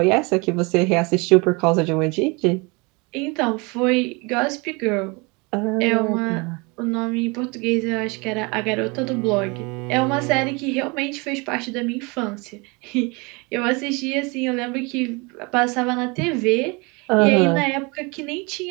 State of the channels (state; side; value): quieter; left; 28.3 dB